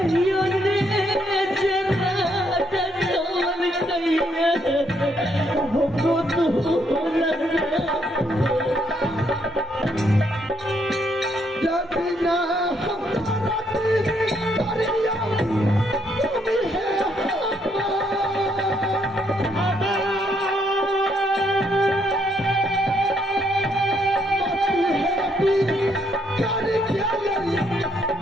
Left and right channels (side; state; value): both; normal; correlation 0.73